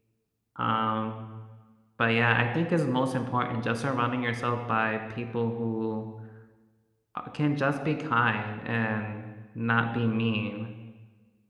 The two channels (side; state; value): both; identical; correlation 1.00